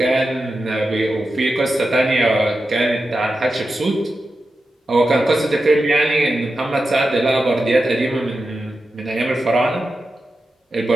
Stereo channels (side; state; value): both; normal; correlation 0.90